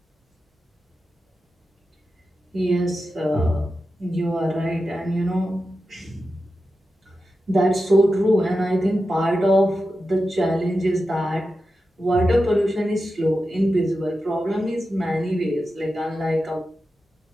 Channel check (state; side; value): normal; both; correlation 0.91